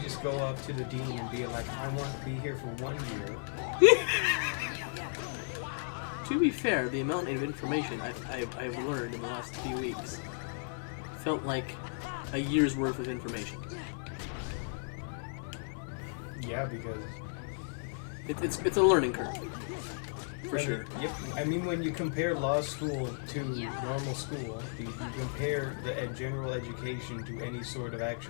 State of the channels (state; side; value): silent; right; digital silence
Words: just go up to the dean and be like, I want to be here for 1 year? To be fair, the amount of information I've learned in the last few weeks felt like a year's worth of information. Yeah, because... It's a learning curve. For sure. Yep. I mean, when you compare law school to normal school, you compare the general education to any sort of